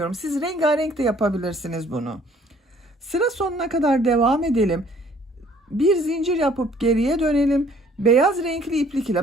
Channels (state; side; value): normal; both; correlation 0.58